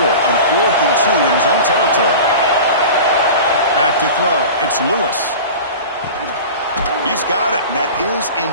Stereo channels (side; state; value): both; inverted; correlation -0.35